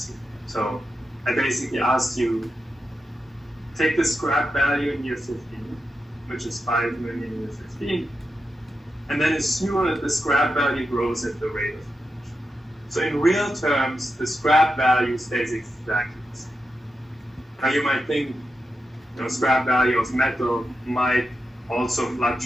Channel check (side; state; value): both; normal; correlation 0.88